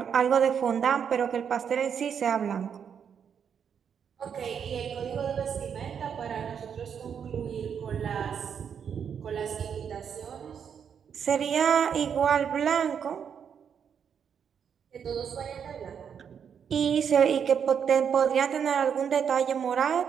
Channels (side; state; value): left; quieter; 7.6 dB